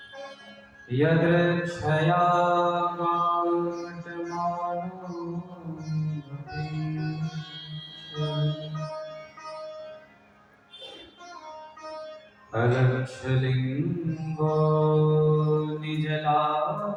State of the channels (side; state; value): both; identical; correlation 1.00